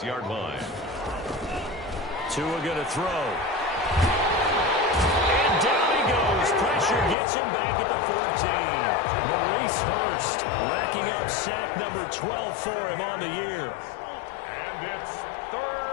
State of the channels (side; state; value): right; drops out; at 7.2 s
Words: line. Tua going to throw. And down he goes. Pressure gets him back at the 14. Maurice Hurst racking up sack number 12 for him on the year. And it's